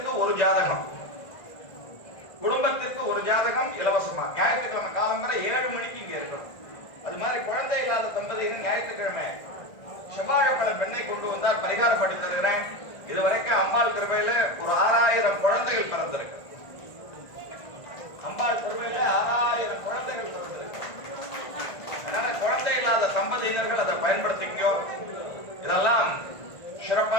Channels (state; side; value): late; right; 1.5 ms